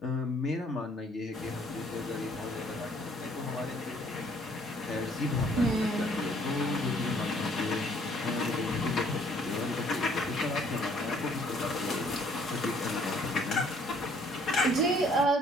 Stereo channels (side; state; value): both; normal; correlation 0.61